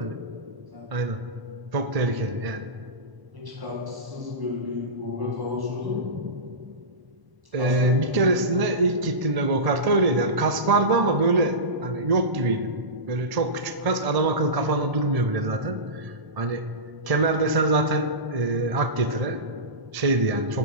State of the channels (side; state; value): left; late; 1.0 ms